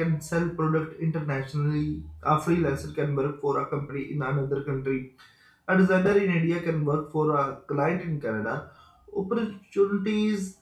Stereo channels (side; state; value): both; identical; correlation 1.00